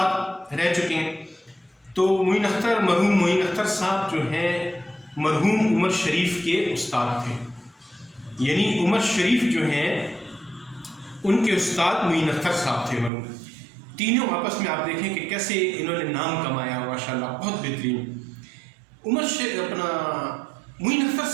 رہ چکے ہیں۔ تو معین اختر، مرحوم معین اختر صاحب جو ہیں مرحوم عمر شریف کے استاد تھے، یعنی عمر شریف جو ہیں ان کے استاد معین اختر صاحب تھے مرحوم۔ تینوں آپس میں آپ دیکھیں کہ کیسے انہوں نے نام کمایا، ماشاءاللہ بہت بہترین۔ معین اختر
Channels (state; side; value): drops out; left; at 13.1 s